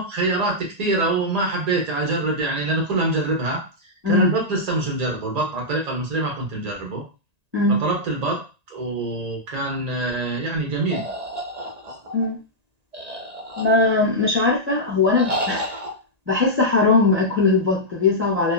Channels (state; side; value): late; left; 1.9 ms